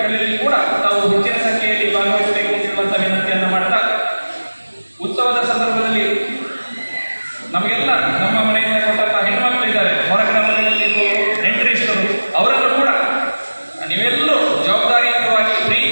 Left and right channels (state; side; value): inverted; both; correlation -1.00